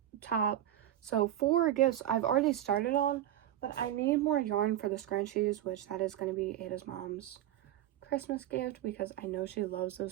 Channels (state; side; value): quieter; left; 12.1 dB